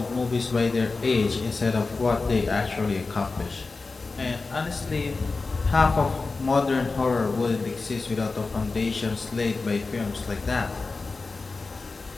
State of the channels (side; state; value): right; quieter; 3.9 dB